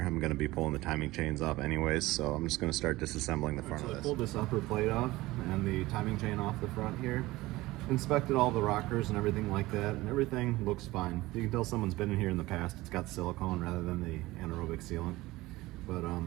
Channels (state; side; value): quieter; left; 19.0 dB